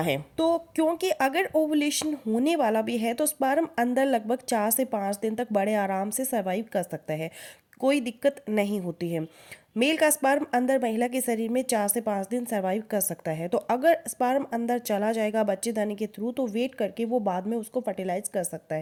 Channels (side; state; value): both; identical; correlation 1.00